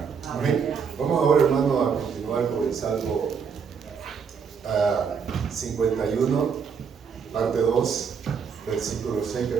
Amén. Vamos ahora, hermano, a continuar con el Salmo 51, parte 2, versículo 6,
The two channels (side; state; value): left; quieter; 6.3 dB